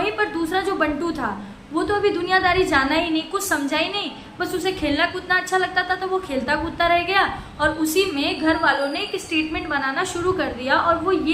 पर दूसरा जो बंटू था वो तो अभी दुनियादारी जाना ही नहीं, कुछ समझा ही नहीं, बस उसे खेलना कूदना अच्छा लगता था तो वो खेलता कूदता रह गया। और उसी में घर वालों ने एक स्टेटमेंट बनाना शुरू कर दिया, और वो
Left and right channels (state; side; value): identical; both; correlation 1.00